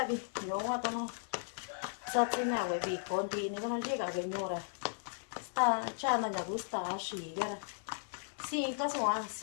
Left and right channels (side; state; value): right; silent; 54 dB below the other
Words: vi no wa no sa ti na we vi conti ne no llega señora sta cha na ya gusta shi gara sin to so a